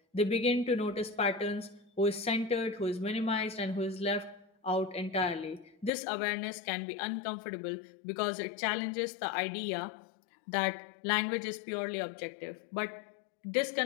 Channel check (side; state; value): right; drops out; at 5.9 s